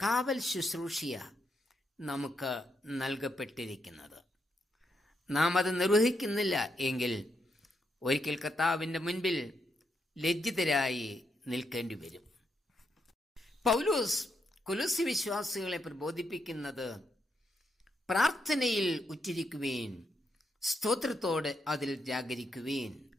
കാവൽ ശുശ്രൂഷയ നമുക്ക് നൽകപ്പെട്ടിരിക്കുന്നത്. നാം അത് നിർവഹിക്കുന്നില്ല എങ്കിൽ ഒരിക്കൽ കർത്താവിൻ്റെ മുൻപിൽ ലജ്ജിതരായി നിൽക്കേണ്ടി വരും. പൗലോസ് കൊലോസ്യ വിശ്വാസികളെ പ്രബോധിപ്പിക്കുന്നത് പ്രാർത്ഥനയിൽ ഉറ്റിരിക്കുവേൻ, സ്തോത്രത്തോടെ അതിൽ ജാഗരിക്കുവേൻ.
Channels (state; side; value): normal; both; correlation 0.80